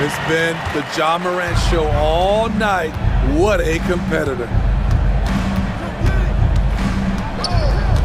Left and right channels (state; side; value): identical; both; correlation 1.00